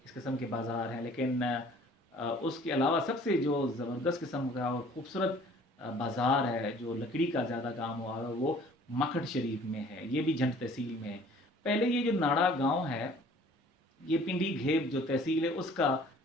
اس قسم کے بازار ہیں. لیکن اس کے علاوہ سب سے جو زبردست قسم کا اور خوبصورت بازار ہے جو لکڑی کا زیادہ کام ہوا ہے وہ مکھٹ شریف میں ہے. یہ بھی جھنڈ تحصیل میں ہے. پہلے یہ جو ناڑا گاؤں ہے یہ پنڈی گھیب جو تحصیل ہے اس کا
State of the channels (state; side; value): normal; both; correlation 0.53